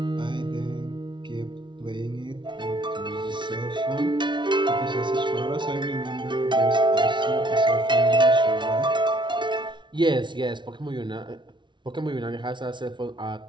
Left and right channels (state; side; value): late; left; 0.23 ms